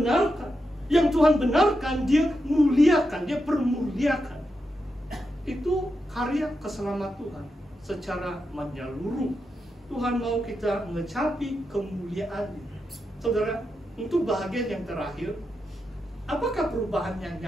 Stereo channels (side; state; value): both; normal; correlation 0.86